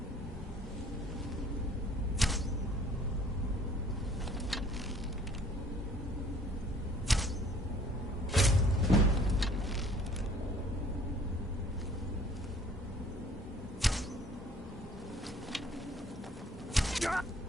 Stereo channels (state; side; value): normal; both; correlation 0.55